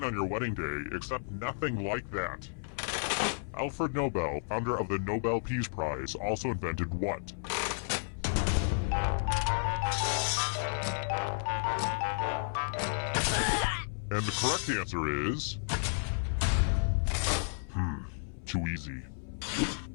on your wedding day, except nothing like that. Alfred Nobel, founder of the Nobel Peace Prize, also invented what? And the correct answer is... too easy.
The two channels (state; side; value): silent; right; 56 dB below the other